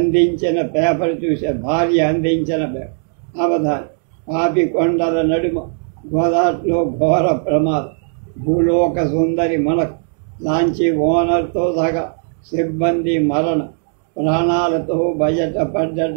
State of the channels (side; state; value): left; silent; 60 dB below the other